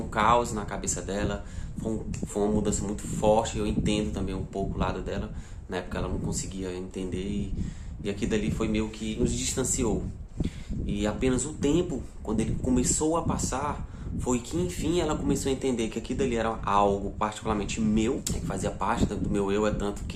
caos na cabeça dela. Foi uma mudança muito forte. Eu entendo também um pouco o lado dela. Na época ela não conseguia entender e aquilo dali foi meio que nos distanciou. E apenas o tempo, quando ele começou a passar, foi que enfim ela começou a entender que aquilo dali era algo particularmente meu, que fazia parte do meu eu, é tanto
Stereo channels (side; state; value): both; identical; correlation 1.00